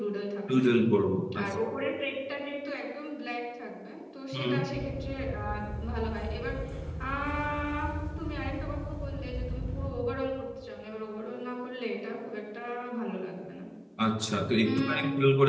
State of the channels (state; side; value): identical; both; correlation 1.00